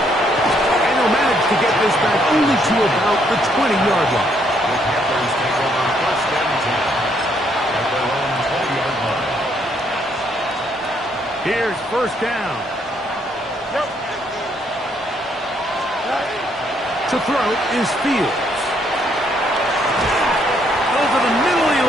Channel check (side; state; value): both; normal; correlation 0.70